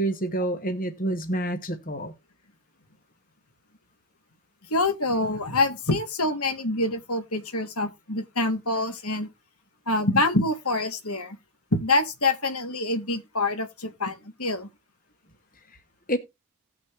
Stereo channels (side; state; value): both; normal; correlation -0.08